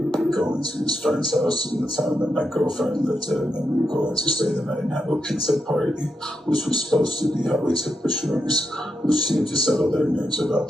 were going to his friend's house in the town that my girlfriend lived in, and we were going to stay the night and have a pizza party, which was supposed to be how we took the shrooms, which seemed to settle their nerves about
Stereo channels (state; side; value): normal; both; correlation 0.84